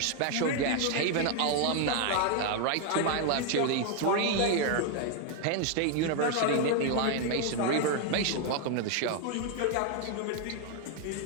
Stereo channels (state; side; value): different; both; correlation 0.00